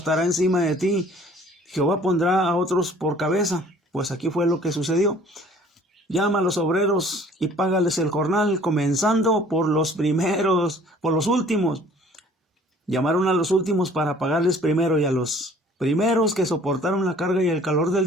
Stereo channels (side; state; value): both; normal; correlation 0.53